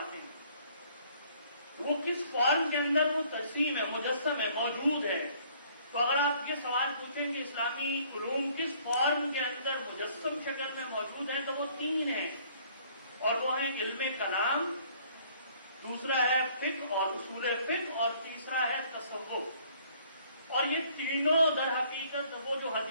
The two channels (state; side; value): inverted; both; correlation -0.59